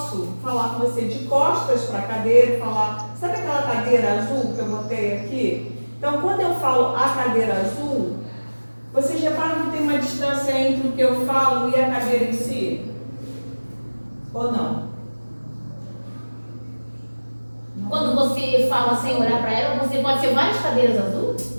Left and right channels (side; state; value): both; inverted; correlation -1.00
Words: falar com você de costas para a cadeira e falar, sabe aquela cadeira azul que eu botei aqui? Então, quando eu falo a cadeira azul, vocês reparam que tem uma distância entre o que eu falo e a cadeira em si? Ou não? Quando você fala sem olhar para ela, você pode ser várias cadeiras azul?